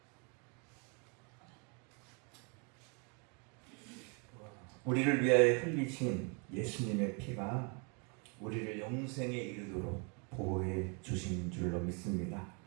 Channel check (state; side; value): quieter; left; 34.9 dB